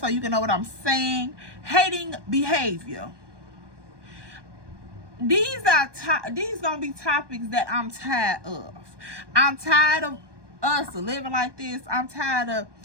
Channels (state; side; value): late; left; 1.2 ms